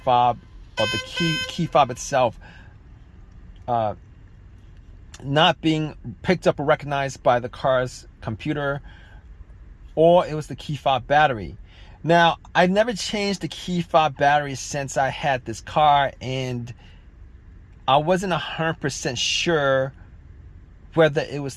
or the key fob itself not being picked up or recognized by the car's computer, or it was the key fob battery. Now, I've never changed the key fob battery since I had this car, and I wasn't 100% sure whether it was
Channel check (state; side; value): identical; both; correlation 1.00